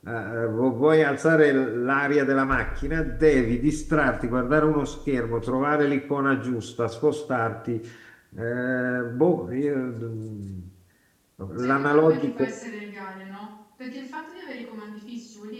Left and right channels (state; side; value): identical; both; correlation 1.00